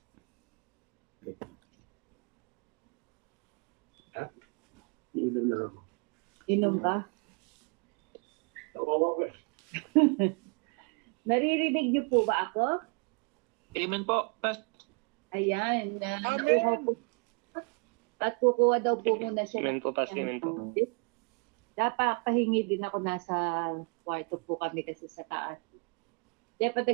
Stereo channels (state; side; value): quieter; left; 36.9 dB